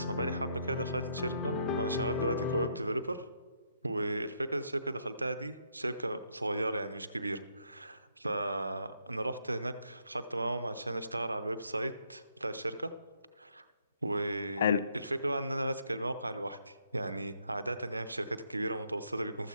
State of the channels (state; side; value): inverted; both; correlation -0.73